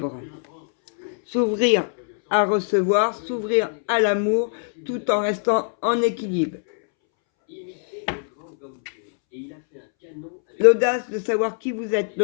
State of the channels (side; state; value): right; silent; 64 dB below the other